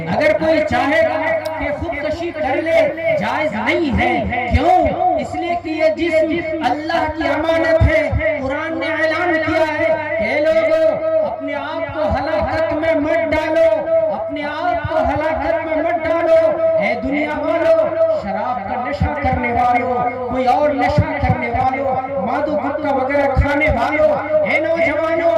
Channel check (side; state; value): both; identical; correlation 1.00